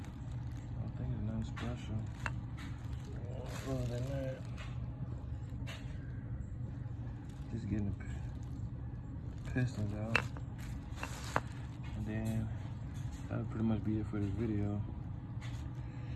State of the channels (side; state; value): both; identical; correlation 1.00